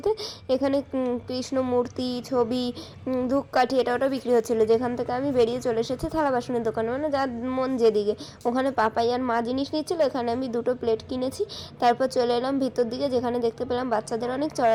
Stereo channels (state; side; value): identical; both; correlation 1.00